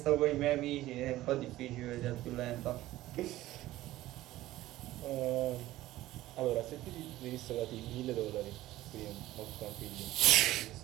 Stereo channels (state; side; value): quieter; left; 15.9 dB